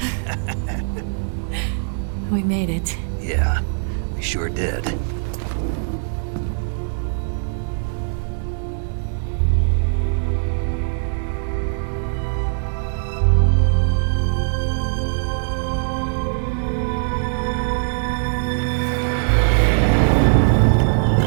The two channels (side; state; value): left; silent; 64 dB below the other